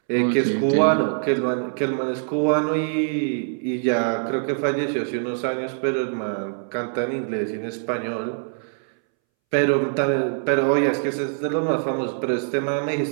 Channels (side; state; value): left; silent; 62 dB below the other